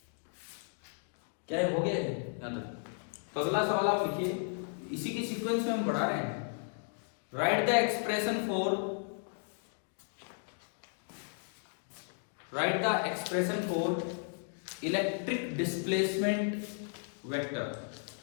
क्या है, हो गया है यहाँ तक? तो अगला सवाल आप लिखिए, इसी की सीक्वेंस में हम बढ़ा रहे हैं। Write the expression for electric displacement vector,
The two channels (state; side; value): silent; right; 55 dB below the other